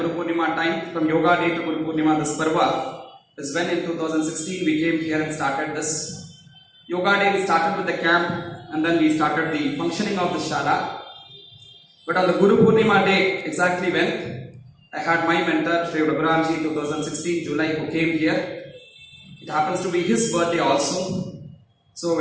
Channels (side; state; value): both; identical; correlation 1.00